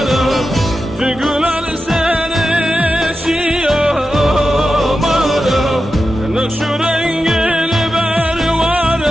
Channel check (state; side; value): normal; both; correlation 0.91